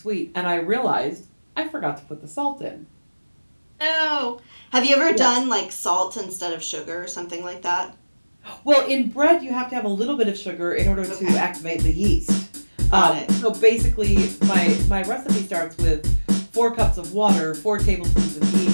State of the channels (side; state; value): both; inverted; correlation -1.00